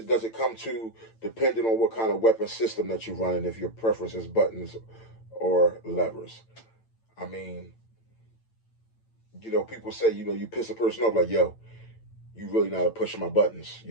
does it come to, depending on what kind of weapon system that you're running, if your preference is buttons or levers? I mean, you know, people say, you know, you piss a person off, like, yo, you really know how to push my buttons.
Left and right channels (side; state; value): right; late; 8.9 ms